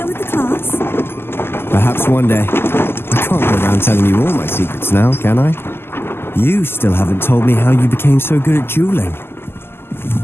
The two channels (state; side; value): late; right; 0.11 ms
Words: with the class? Perhaps one day. I can't go around telling you all my secrets now, can I? You still haven't told me how you became so good at dueling.